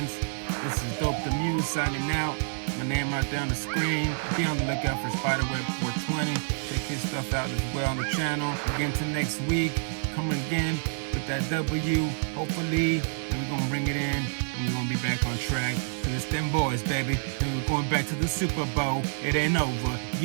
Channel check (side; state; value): left; silent; 58 dB below the other